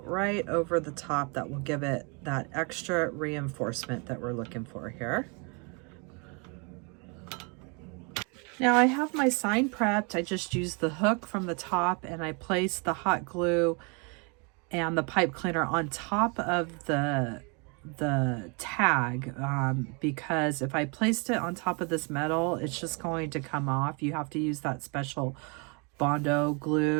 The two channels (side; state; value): left; quieter; 33.1 dB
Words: right over the top that will give it that extra reinforcement that we're looking for here. Now I have my sign prepped. I just used the hook from the top and I placed the hot glue and the pipe cleaner on top of the tag because if I placed it on top of this metal, it's just going to come off. You have to use that special Bondo